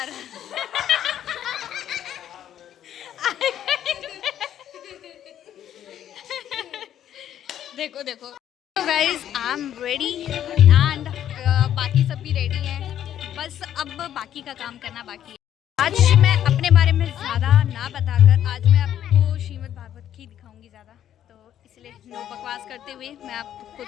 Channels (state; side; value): quieter; right; 10.7 dB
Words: देखो देखो। तो guys I am ready and बाकी सब भी रेडी हैं, बस अब बाकी का काम करना बाकी है। आज मैं अपने बारे में ज़्यादा ना बताकर आज मैं आपको श्रीमद् भागवत की दिखाऊंगी ज़्यादा, तो इसलिए नो बकवास करते हुए मैं आपको